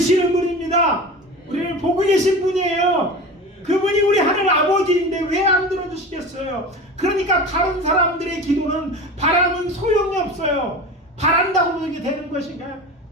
분입니다. 우리를 보고 계신 분이에요. 그분이 우리 하늘 아버지인데 왜 안 들어주시겠어요? 그러니까 다른 사람들의 기도는 바람은 소용이 없어요. 바란다고 그렇게 되는 것인가요?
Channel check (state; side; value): normal; both; correlation 0.32